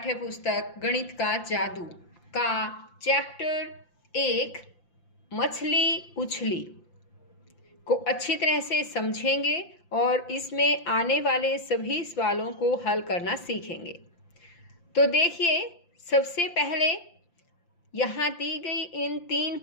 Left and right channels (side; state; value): right; late; 5.8 ms